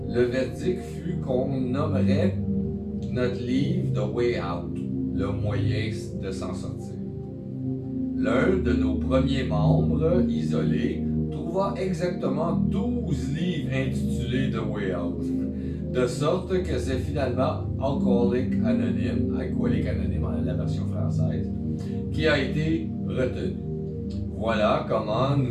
le verdict fut qu'on nommerait notre livre The Way Out, le moyen de s'en sortir. L'un de nos premiers membres isolés trouva exactement 12 livres intitulés The Way Out, de sorte que c'est finalement Alcooliques Anonymes, la version française, qui a été retenu. Voilà comment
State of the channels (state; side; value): identical; both; correlation 1.00